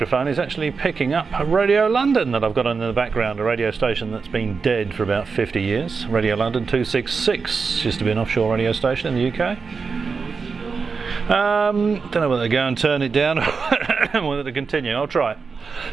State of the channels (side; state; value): left; quieter; 5.0 dB